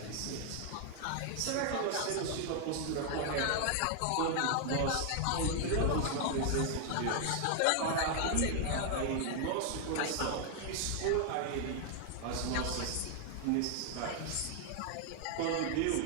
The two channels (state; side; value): different; both; correlation 0.00